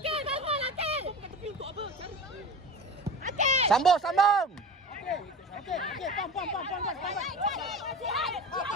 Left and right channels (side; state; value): both; normal; correlation 0.33